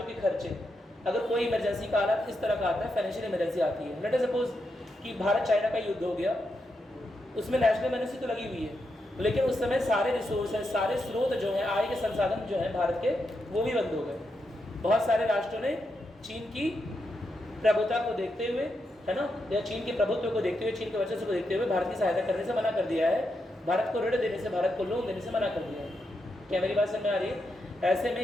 के खर्चे, अगर कोई इमरजेंसी का हालत इस तरह का आता है, फाइनेंशियल इमरजेंसी आती है, लेट अस सपोज कि भारत चाइना का युद्ध हो गया, उसमें नेशनल इमरजेंसी तो लगी हुई है, लेकिन उस समय सारे रिसोर्सेज, सारे स्रोत जो हैं, आय के संसाधन जो हैं भारत के, वो भी बंद हो गए। बहुत सारे राष्ट्रों ने चीन की प्रभुता को देखते हुए, है ना, या चीन के प्रभुत्व को देखते हुए, चीन के वर्चस्व को देखते हुए भारत की सहायता करने से मना कर दिया है, भारत को ऋण देने से, भारत को लोन देने से मना कर दिया है। क्या मेरी बात समझ में आ रही है? ऐसे में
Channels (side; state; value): both; normal; correlation 0.84